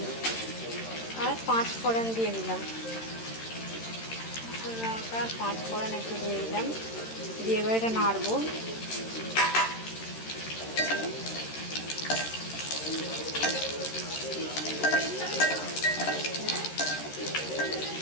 আর 5 ফোড়ন দিয়ে দিলাম। শুকনো লঙ্কা 5 ফোড়ন একটু দিয়ে দিলাম, দিয়ে এবার এটা নাড়বো।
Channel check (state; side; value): late; right; 13 ms